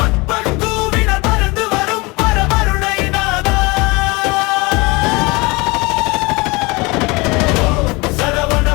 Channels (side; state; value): right; quieter; 25.2 dB